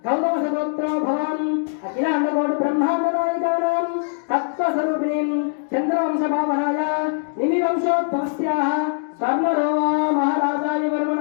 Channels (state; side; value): silent; right; digital silence